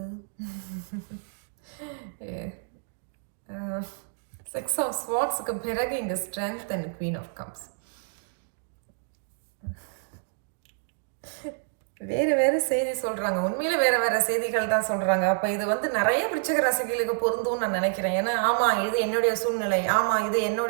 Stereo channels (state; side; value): silent; left; digital silence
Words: 6 ஆஃப் ஸ்வார்ட்ஸுக்கு பிறகு இங்கே strength and queen of cups. வேறு வேறு செய்தி சொல்கிறாங்க. உண்மையிலே வேறு வேறு செய்திகள் தான் சொல்கிறாங்க. அப்போ இது வந்து நிறைய விருச்சிக ராசிகளுக்கு பொருந்தும்னு நான் நினைக்கிறேன். ஏன்னா ஆமாம் இது என்னுடைய சூழ்நிலை, ஆமாம் இது